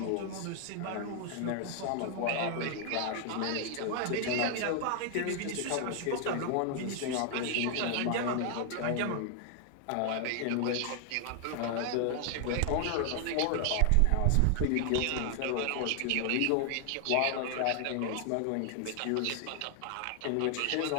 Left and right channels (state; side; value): different; both; correlation 0.00